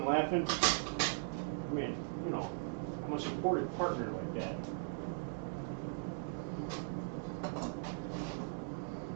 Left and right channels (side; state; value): left; silent; digital silence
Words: laughing. I mean, you know, I'm a supportive partner like that.